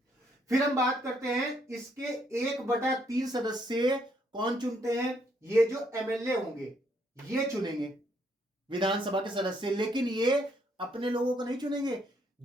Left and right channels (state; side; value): normal; both; correlation 0.71